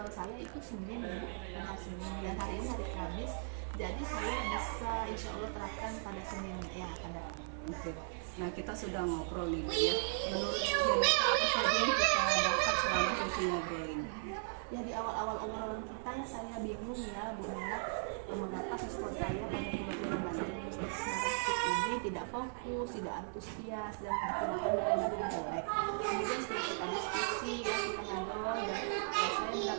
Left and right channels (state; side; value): silent; left; 53 dB below the other